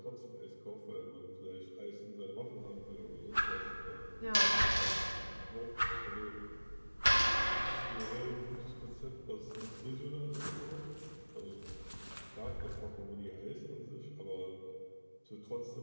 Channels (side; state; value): both; inverted; correlation -1.00